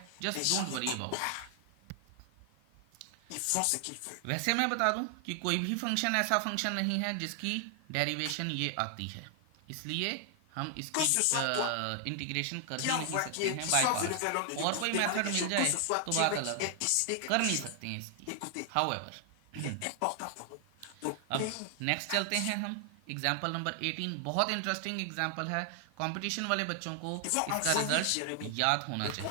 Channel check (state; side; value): different; both; correlation 0.00